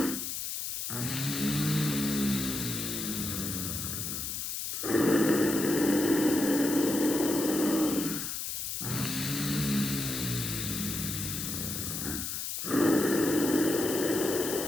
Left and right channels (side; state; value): left; noise; hiss, 4 dB below the sound